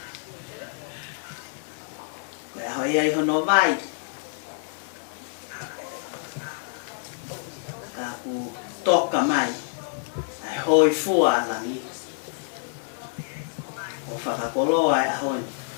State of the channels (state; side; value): silent; right; digital silence